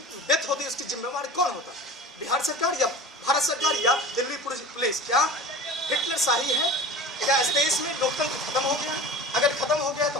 डेथ होती उसकी जिम्मेवार कौन होता? बिहार सरकार या भारत सरकार या दिल्ली पुलिस? क्या हिटलर शाही है? क्या इस देश में लोकतंत्र खत्म हो गया? अगर खत्म हो गया तो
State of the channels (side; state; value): both; normal; correlation 0.37